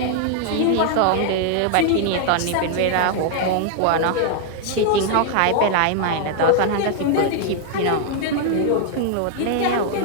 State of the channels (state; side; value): different; both; correlation 0.00